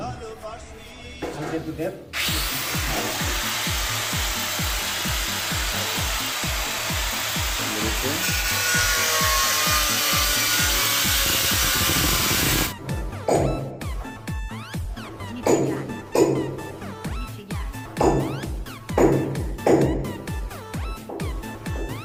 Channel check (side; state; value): both; identical; correlation 1.00